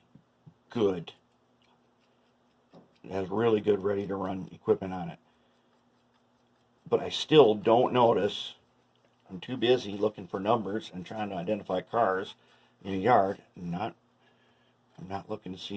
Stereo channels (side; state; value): both; identical; correlation 1.00